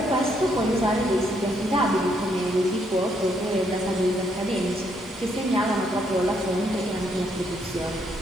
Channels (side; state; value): both; normal; correlation 0.73